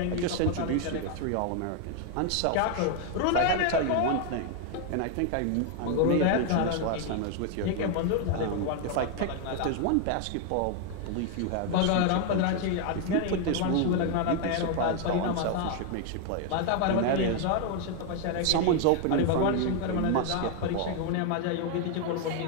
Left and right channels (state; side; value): different; both; correlation 0.00